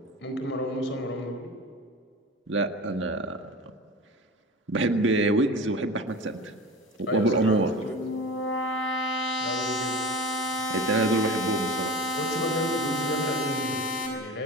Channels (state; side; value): normal; both; correlation 0.32